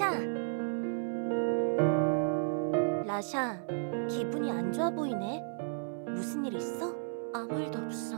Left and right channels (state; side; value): silent; left; digital silence